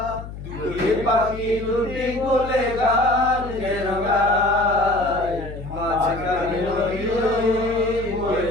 দুটি পাখি দুটি কোলে গান যেন গায়। মাঝখানে নদী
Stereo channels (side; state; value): left; noise; hum, 11 dB below the sound